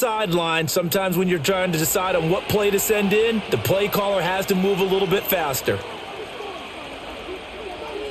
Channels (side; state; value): both; identical; correlation 1.00